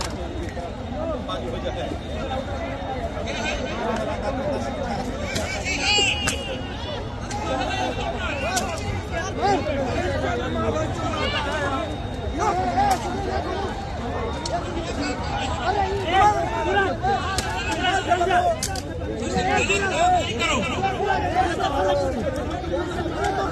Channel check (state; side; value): identical; both; correlation 1.00